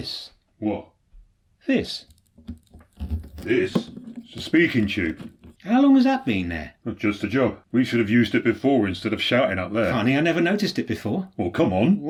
What? This. This? It's a speaking tube. How long has that been there? Not just a job. We should have used it before instead of shouting up there. Funny, I never noticed it before. Well, come on.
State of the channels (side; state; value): both; identical; correlation 1.00